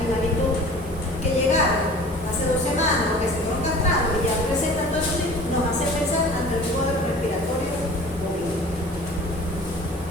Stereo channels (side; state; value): both; normal; correlation 0.44